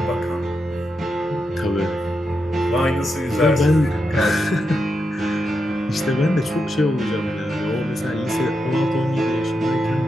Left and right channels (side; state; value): both; normal; correlation 0.85